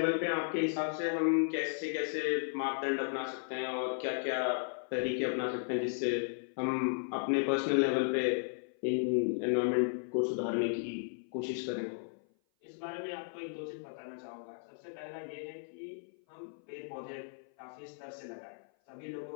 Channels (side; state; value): right; silent; 54 dB below the other